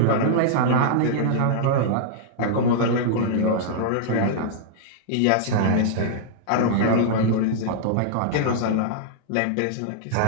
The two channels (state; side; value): different; both; correlation -0.01